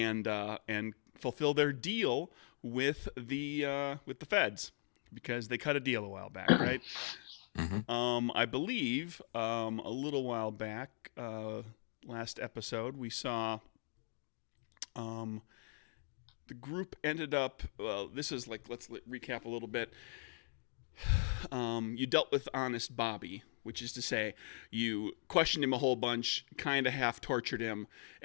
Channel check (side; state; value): right; silent; 51 dB below the other